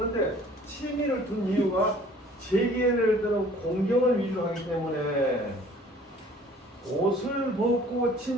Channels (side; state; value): both; normal; correlation 0.53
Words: 치미를 둔 이유가 재계를 드는 공경을 위주로 하기 때문에 옷을 벗고